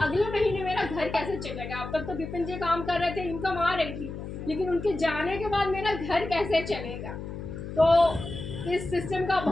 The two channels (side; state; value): left; noise; hum, 8 dB below the sound